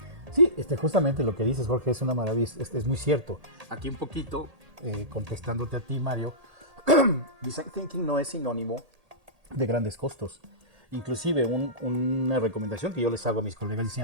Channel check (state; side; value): late; left; 1.8 ms